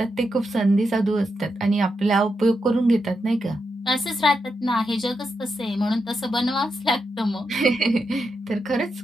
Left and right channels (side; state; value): both; normal; correlation 0.85